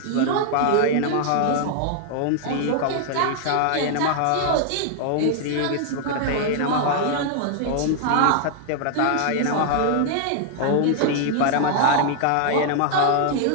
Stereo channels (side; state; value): both; different; correlation 0.00